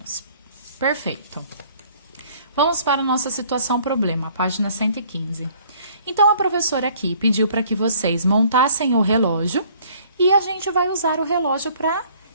Perfeito. Vamos para a nossa situação problema, página 115. Então, a professora aqui pediu para que vocês montassem o relógio e a gente vai usar o relógio para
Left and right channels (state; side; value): inverted; both; correlation -0.57